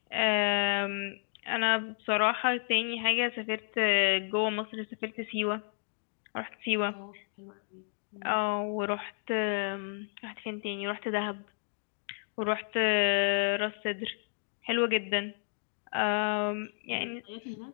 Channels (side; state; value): right; silent; digital silence